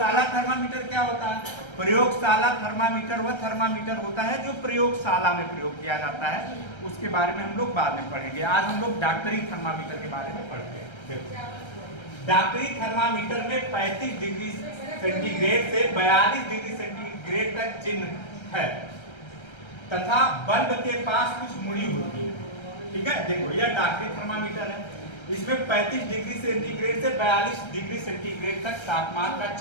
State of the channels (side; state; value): right; late; 1.3 ms